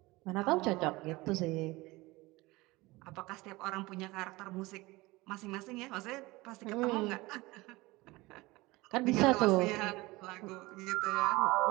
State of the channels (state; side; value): quieter; left; 21.4 dB